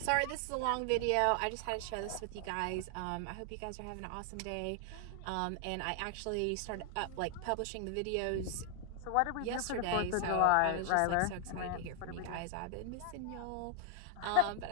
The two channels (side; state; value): both; different; correlation 0.00